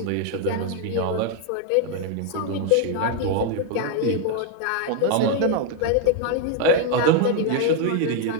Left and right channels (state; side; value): different; both; correlation 0.00